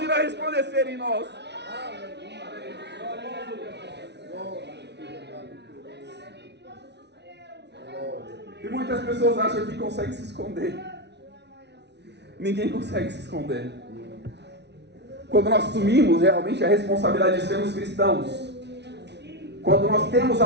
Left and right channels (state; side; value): late; left; 0.50 ms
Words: irá resplandecer em nós. E muitas pessoas acham que conseguem se esconder. Ninguém consegue se esconder. Quando nós assumimos realmente a responsabilidade de sermos cristãos, quando nós temos